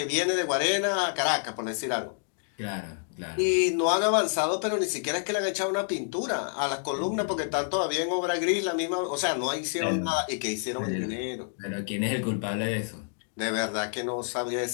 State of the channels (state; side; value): silent; right; digital silence